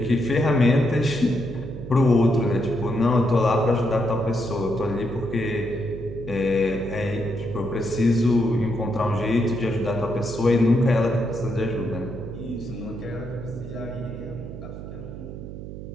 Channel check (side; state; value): right; noise; hum, 10 dB below the sound